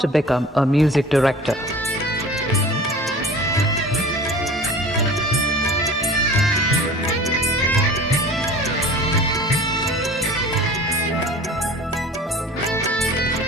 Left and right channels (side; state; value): both; normal; correlation 0.41